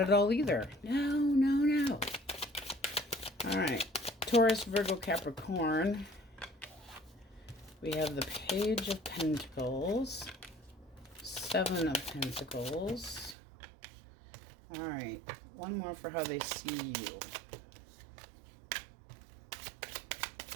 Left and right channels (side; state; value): left; drops out; at 13.4 s